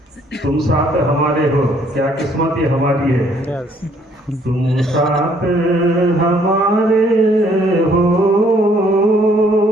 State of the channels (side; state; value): both; normal; correlation 0.64